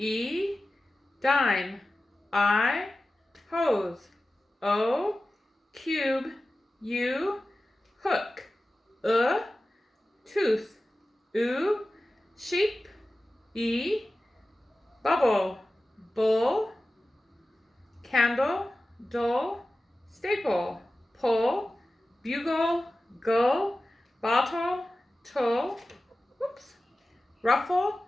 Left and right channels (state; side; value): normal; both; correlation 0.95